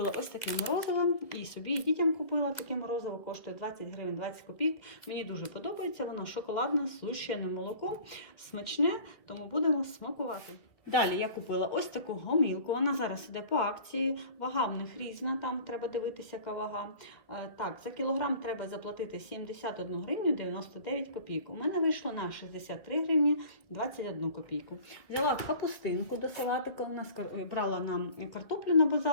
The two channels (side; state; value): right; late; 2.3 ms